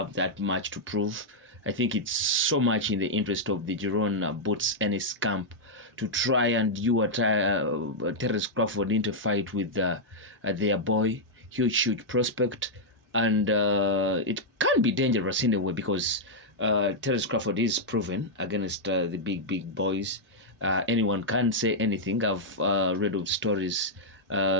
that much to prove. I think it's so much in the interest of the Jaron Boots Ennis camp to try and Terence Crawford into a fight with their boy, huge prospect. And it can be dangerous in a way, because Terence Crawford is proven against the big boys. Anyone can say anything. I've read of stories,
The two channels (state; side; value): normal; both; correlation -0.05